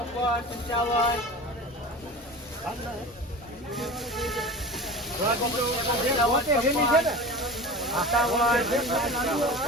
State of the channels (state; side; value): normal; both; correlation 0.33